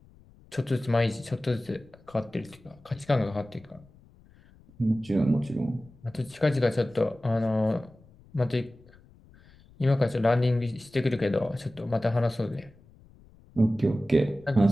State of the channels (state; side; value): noise; left; rumble, 26 dB below the sound